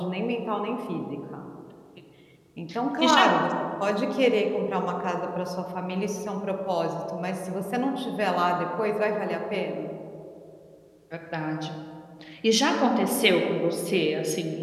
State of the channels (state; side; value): identical; both; correlation 1.00